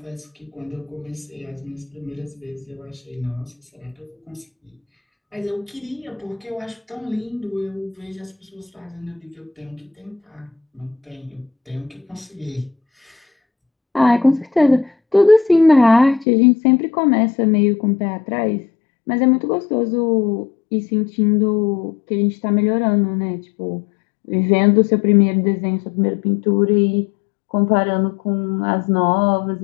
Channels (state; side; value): drops out; right; at 16.2 s